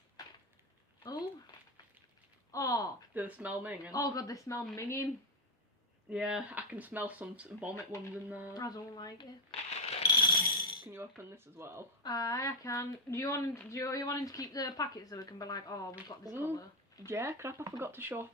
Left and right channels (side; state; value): both; normal; correlation 0.06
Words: Oh. Oh. Do they smell minging? Oh god, they smell minging. Yeah, I can smell some vomit ones in there. I don't like it. Can you open this as well? I can. Do you want to keep the packet so we can be like, oh, we've got this colour? Yeah, crap, I forgot to show off